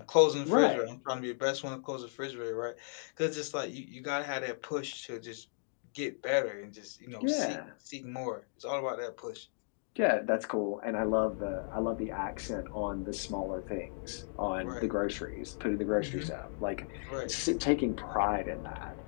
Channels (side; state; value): right; silent; digital silence